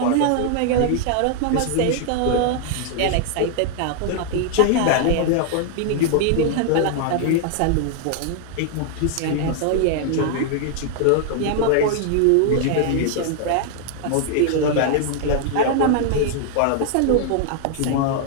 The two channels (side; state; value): both; different; correlation 0.00